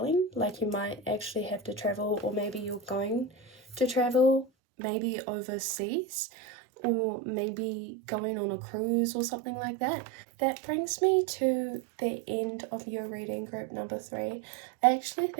Like, you might actually have to travel, or maybe you're going to travel, maybe overseas, or maybe going on a cruise or something like that. That brings me to the end of your reading, group number 3. I actually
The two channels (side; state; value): left; drops out; at 4.5 s